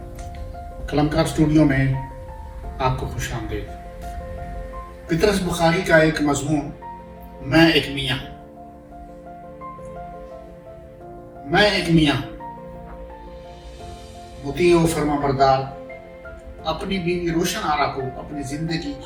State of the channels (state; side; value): identical; both; correlation 1.00